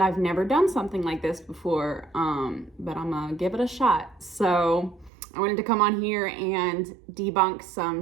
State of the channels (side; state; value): left; drops out; at 5.1 s